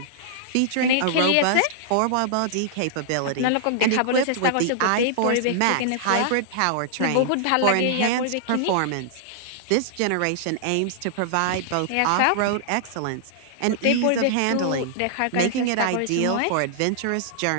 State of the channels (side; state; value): both; different; correlation -0.01